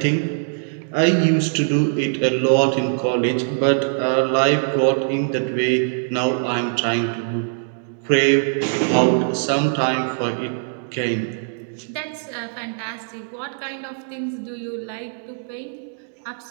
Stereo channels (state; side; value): silent; left; digital silence